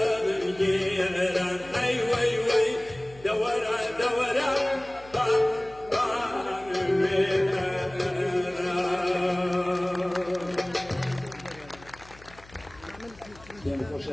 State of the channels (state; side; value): noise; left; hum, 22 dB below the sound